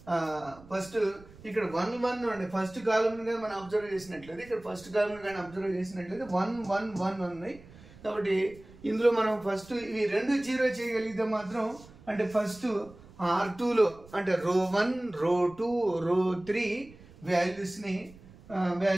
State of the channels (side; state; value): right; noise; rumble, 21 dB below the sound